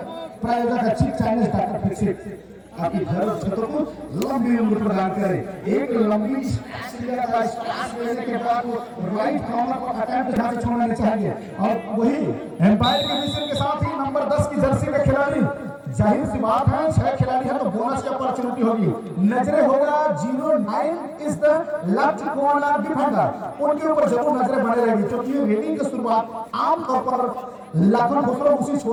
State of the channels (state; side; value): identical; both; correlation 1.00